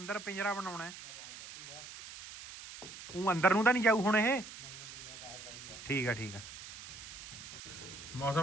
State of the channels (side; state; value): right; noise; hiss, 13 dB below the sound